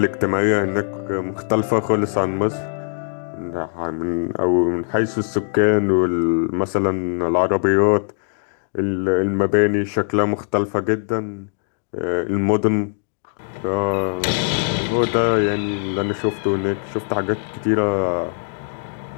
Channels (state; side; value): silent; right; digital silence